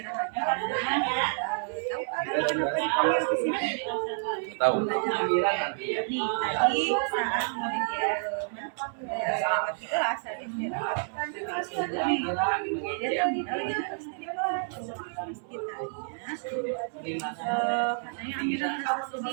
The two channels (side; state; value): left; silent; 58 dB below the other